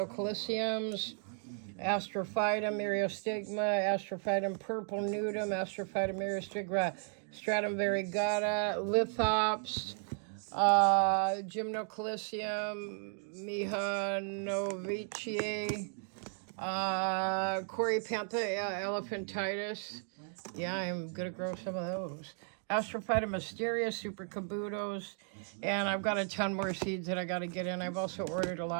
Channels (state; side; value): silent; left; 55 dB below the other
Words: Astrophytum myriostigma, Astrophytum purple nudum, Astrophytum myriostigma, Stratum variegata, Lithops, Gymnocalycium, Mihanoviceae, Corypantha elephantitis. Yeah, I'm going to grow some of those. Astrophyta mysteria, super cabutos, and I've got a ton more seeds that I got to get in. I've also ordered a